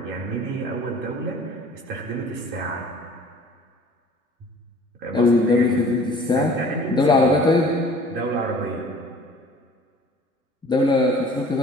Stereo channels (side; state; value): both; normal; correlation 0.49